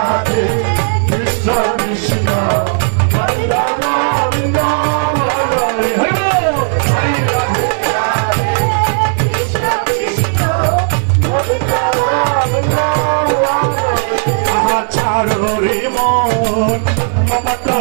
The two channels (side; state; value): left; silent; digital silence